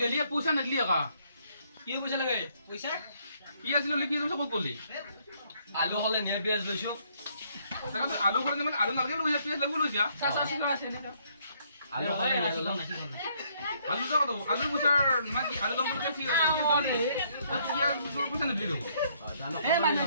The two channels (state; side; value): inverted; both; correlation -0.68